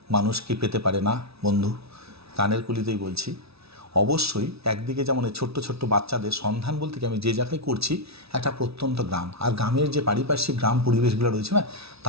মানুষ কি পেতে পারে না বন্ধু? কানের কুলিতেই বলছি। অবশ্যই একদিকে যেমন এই ছোট্ট ছোট্ট বাচ্চাদের সন্ধান বলতে কি আমি যে জায়গায় করছি একটা প্রত্যন্ত গ্রাম, আর গ্রামের যে পারিপার্শ্বিক গ্রাম পরিবেশগুলো রয়েছে না,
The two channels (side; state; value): left; late; 0.77 ms